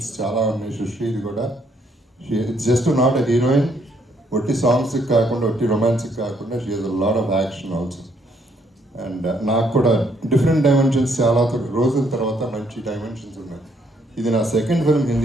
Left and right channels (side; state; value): both; normal; correlation 0.70